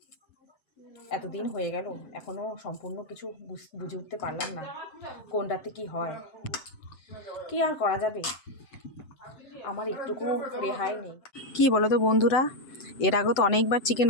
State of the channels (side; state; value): right; late; 7.9 ms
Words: এতদিন হয়ে গেল এখনও সম্পূর্ণ কিছু বুঝে উঠতে পারলাম না কোনটাতে কি হয়। কি আর করা যাবে, আমার একটুকু রেহাই নেই। কি বলো তো বন্ধুরা, এর আগে তো অনেকবার চিকেন